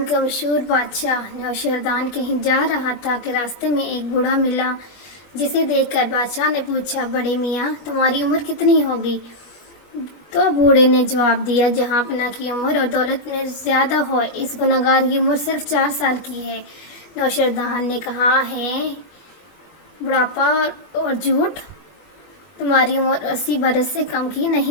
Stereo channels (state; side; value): late; right; 21 ms